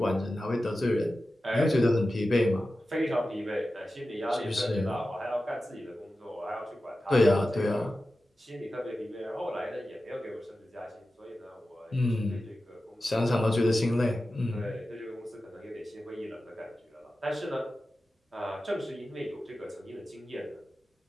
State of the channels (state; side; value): normal; both; correlation 0.93